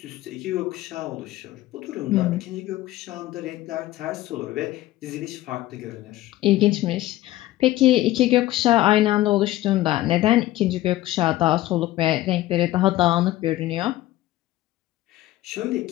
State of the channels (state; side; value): quieter; right; 15.9 dB